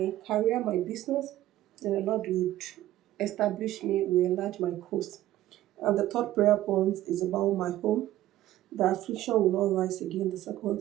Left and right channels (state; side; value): quieter; left; 14.4 dB